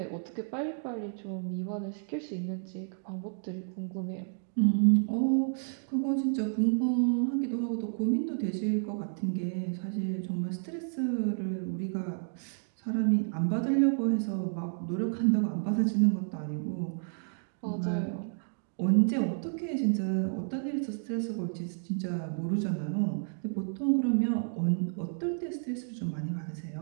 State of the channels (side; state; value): left; silent; digital silence